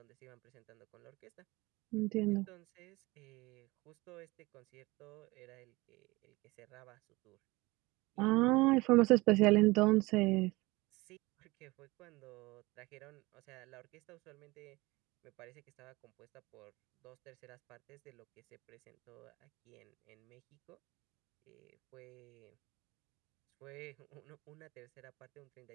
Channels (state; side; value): quieter; left; 22.4 dB